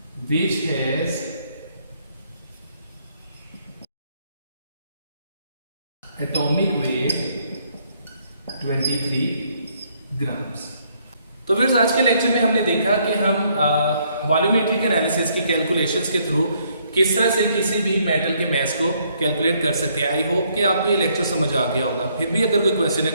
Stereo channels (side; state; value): both; inverted; correlation -0.69